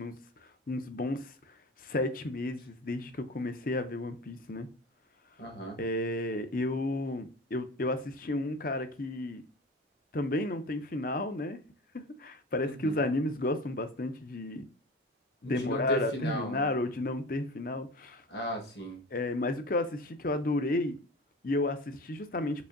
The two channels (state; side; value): normal; both; correlation 0.35